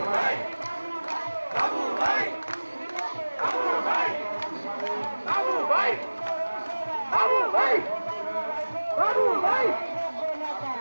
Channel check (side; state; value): both; inverted; correlation -1.00